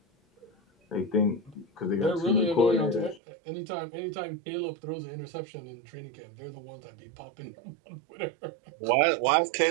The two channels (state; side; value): drops out; left; at 3.2 s